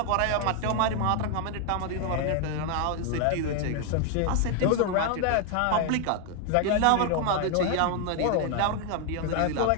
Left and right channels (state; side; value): different; both; correlation 0.00